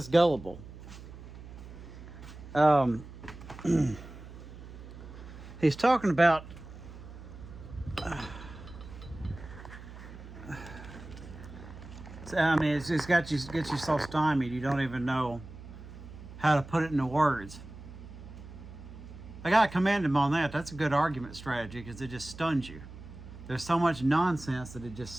gullible? He's talking about I mean, it's gets you so stymied you don't even know how to put it into words. I gotta commend him on that. That's a good argument strategy because it just stuns you. There's so much nonsense that it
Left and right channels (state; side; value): noise; right; hum, 15 dB below the sound